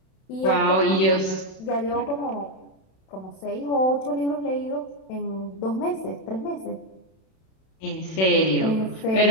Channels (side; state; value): right; late; 32 ms